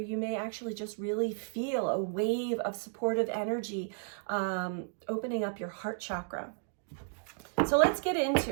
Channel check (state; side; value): silent; left; 56 dB below the other